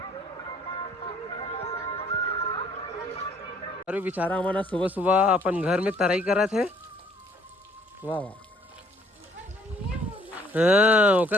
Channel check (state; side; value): normal; both; correlation 0.61